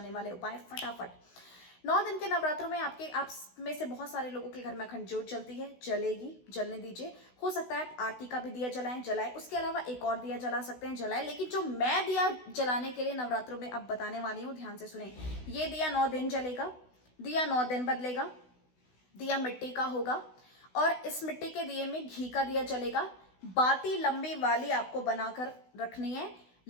वाले उपाय फटाफट। 9 दिन के नवरात्रों में आप में से बहुत सारे लोगों के घर में अखंड ज्योत जलती है, जलेगी, जलने दीजिए। हो सकता है आरती का भी दिया जलाएं। उसके अलावा एक और दिया जला सकते हैं, जलाएं। लेकिन जो मैं दिया जलाने के लिए नवरात्रों में अब बताने वाली हूँ, ध्यान से सुने। ये दिया 9 दिन जलेगा, दिया 9 दिन बदलेगा, दिया मिट्टी का होगा और इस मिट्टी के दिए में घी का दिया जलेगा। बाती लंबी वाली आपको बनाकर रखनी है।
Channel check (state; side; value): late; right; 16 ms